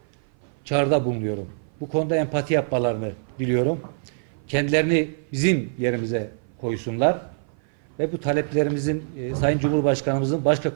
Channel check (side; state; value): left; silent; 56 dB below the other